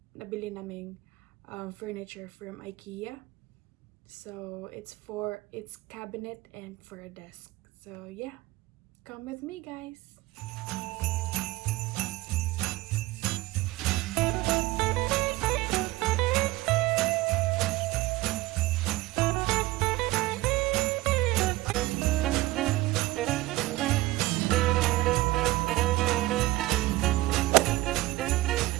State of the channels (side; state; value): left; quieter; 18.6 dB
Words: nabili naming furniture from IKEA. So it's for its cabinet and for a desk. So yeah, come with me guys.